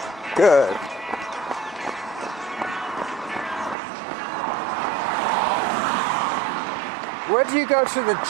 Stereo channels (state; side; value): drops out; left; at 3.8 s